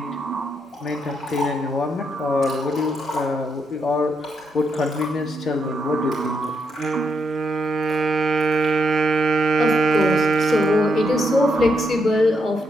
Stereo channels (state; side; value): normal; both; correlation 0.79